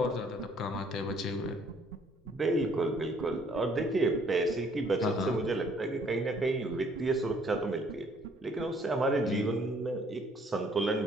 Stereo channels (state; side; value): normal; both; correlation 0.62